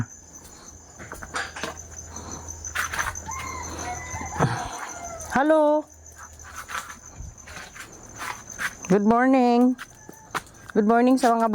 Hello. Good morning. Good morning sa mga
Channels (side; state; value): both; identical; correlation 1.00